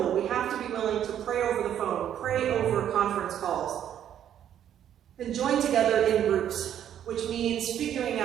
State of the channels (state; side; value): quieter; left; 10.1 dB